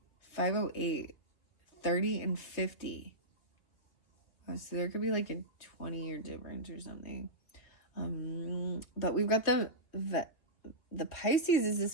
508. 30 and 50. So there could be like a 20-year difference or something. But we've got the Pisces is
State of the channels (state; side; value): late; right; 2.8 ms